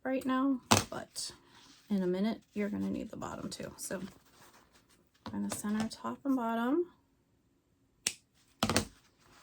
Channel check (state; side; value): identical; both; correlation 1.00